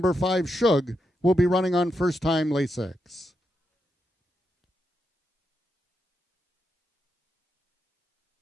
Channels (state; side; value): normal; both; correlation 0.85